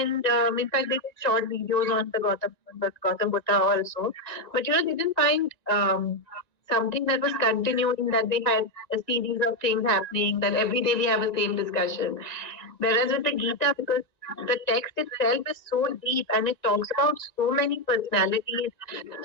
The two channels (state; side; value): late; right; 1.9 ms